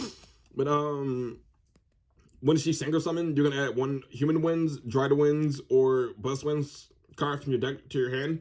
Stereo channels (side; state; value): both; identical; correlation 1.00